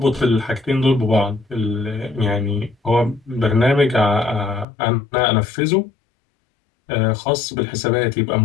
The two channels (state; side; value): drops out; right; at 4.7 s